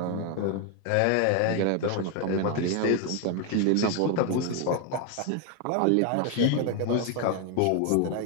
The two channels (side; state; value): both; different; correlation 0.01